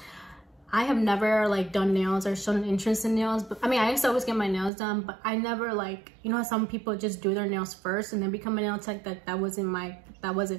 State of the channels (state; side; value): drops out; left; at 4.7 s